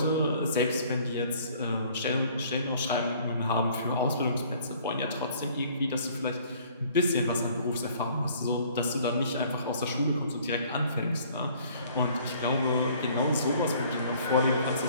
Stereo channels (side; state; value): both; inverted; correlation -0.56